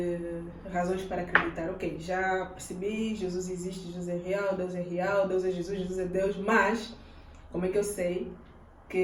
razões para acreditar. Ok, já percebi, Jesus existe, Jesus é real, Deus é Jesus, Jesus é Deus, mas como é que eu sei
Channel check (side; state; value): both; identical; correlation 1.00